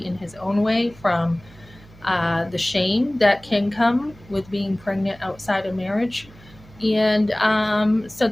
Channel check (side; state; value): right; noise; hum, 23 dB below the sound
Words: in his own way from the shame that can come with being pregnant outside of marriage. And so